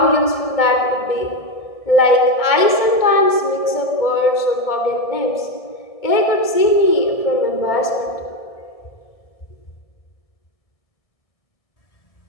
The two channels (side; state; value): right; late; 1.6 ms